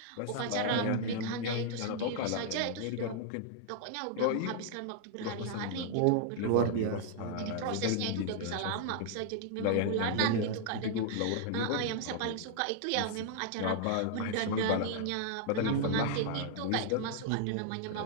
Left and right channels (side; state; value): both; different; correlation -0.01